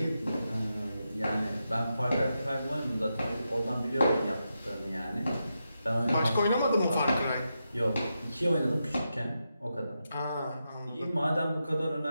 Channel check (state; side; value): inverted; both; correlation -0.87